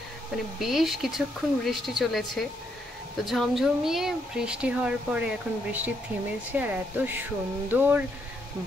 মানে বেশ কিছুক্ষণ বৃষ্টি চলেছে, তো ঝমঝমিয়ে বৃষ্টি হওয়ার পরে এখন বৃষ্টি থেমেছে, আর এত সুন্দর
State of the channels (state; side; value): normal; both; correlation 0.76